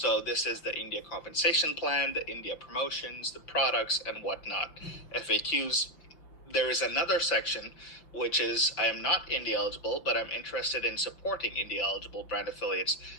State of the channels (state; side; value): late; right; 5.9 ms